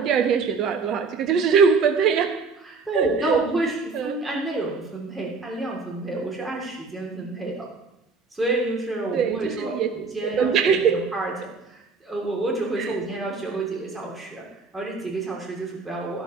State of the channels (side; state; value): left; quieter; 4.6 dB